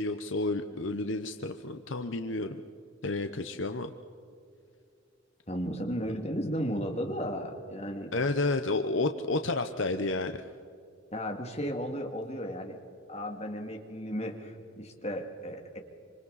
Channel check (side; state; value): both; normal; correlation 0.25